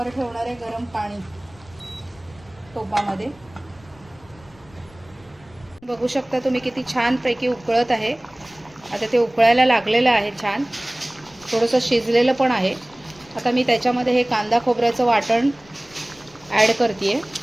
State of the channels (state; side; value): noise; left; rumble, 26 dB below the sound